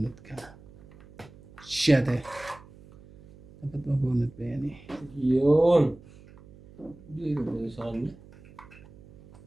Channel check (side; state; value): right; noise; hum, 22 dB below the sound